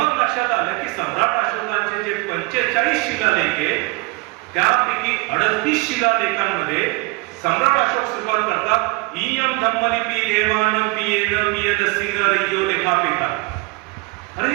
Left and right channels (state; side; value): quieter; left; 25.3 dB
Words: लक्षात आलं की सम्राट अशोकांचे जे 45 शिलालेख आहे त्यापैकी 38 शिलालेखांमध्ये सम्राट अशोक सुरुवात करतात इयम धम्मलिपी देवानं पियेन पियदसीन रयो लेखापेता. अरे